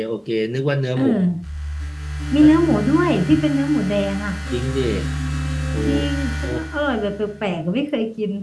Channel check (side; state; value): both; identical; correlation 1.00